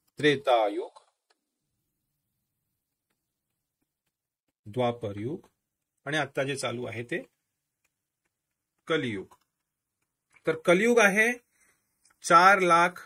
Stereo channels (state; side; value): identical; both; correlation 1.00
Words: त्रेतायुग, द्वापर युग आणि आता जे चालू आहे ते कलियुग. तर कलियुग आहे